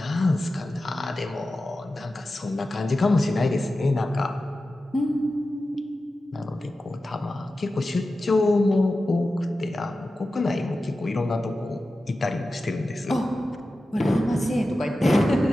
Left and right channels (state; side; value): normal; both; correlation 0.93